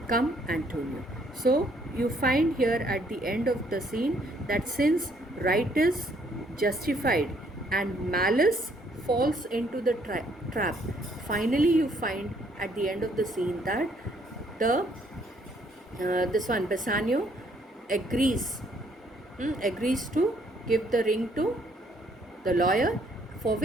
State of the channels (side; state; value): both; normal; correlation 0.66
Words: Come, Antonio. So you find here at the end of the scene that since right is justified and malice falls into the trap, finally you find at the end of the scene that the this one Bassanio agrees to give the ring to the lawyer, for